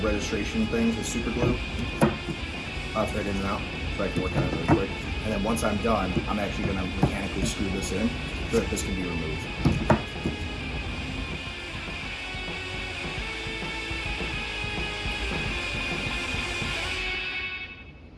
things with super glue. I'll thread in and out so I can work on it really quick. And then once I'm done, I'm actually gonna mechanically screw this in so that this can be removed.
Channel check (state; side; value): identical; both; correlation 1.00